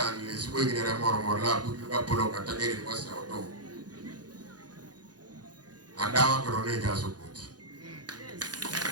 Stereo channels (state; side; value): late; left; 0.69 ms